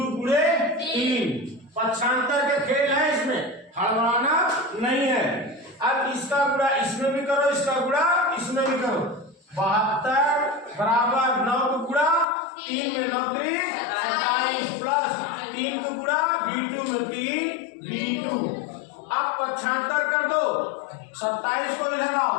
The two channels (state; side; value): drops out; right; at 12.2 s